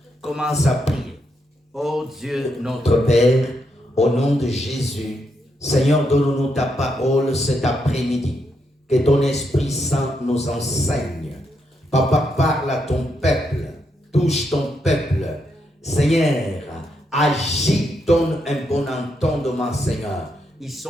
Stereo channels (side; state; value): both; normal; correlation 0.80